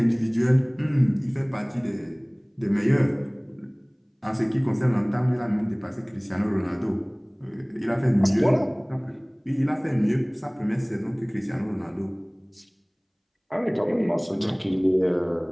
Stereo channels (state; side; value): identical; both; correlation 1.00